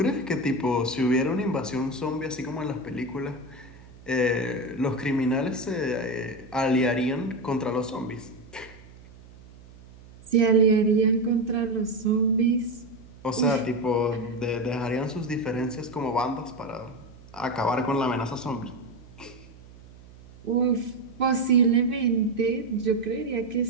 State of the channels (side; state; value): right; noise; hum, 21 dB below the sound